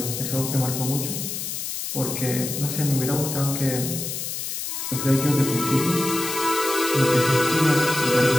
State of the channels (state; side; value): noise; left; hiss, 5 dB below the sound